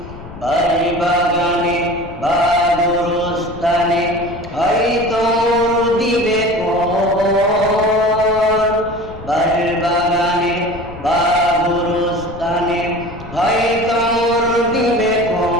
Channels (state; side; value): noise; left; rumble, 15 dB below the sound